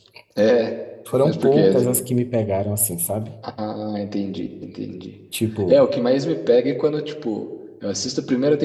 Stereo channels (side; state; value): both; identical; correlation 1.00